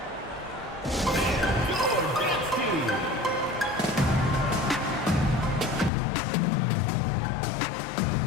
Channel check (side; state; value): right; drops out; at 5.9 s